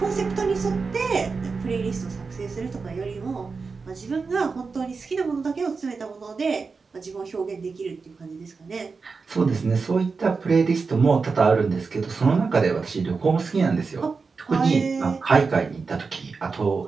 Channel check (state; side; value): quieter; left; 4.7 dB